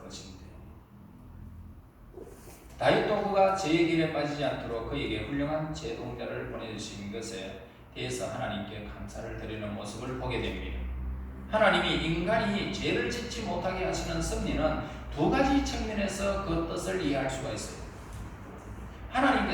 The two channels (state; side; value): identical; both; correlation 1.00